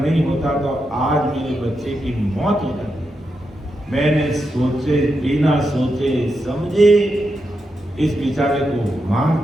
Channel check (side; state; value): both; normal; correlation 0.86